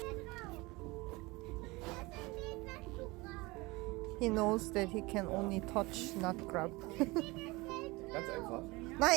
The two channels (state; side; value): quieter; left; 23.2 dB